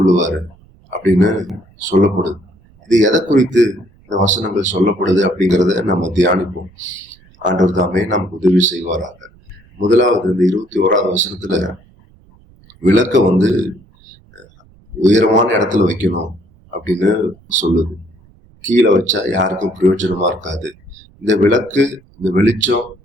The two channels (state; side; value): noise; right; rumble, 29 dB below the sound